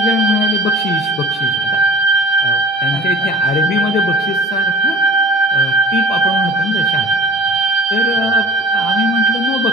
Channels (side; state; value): both; normal; correlation 0.44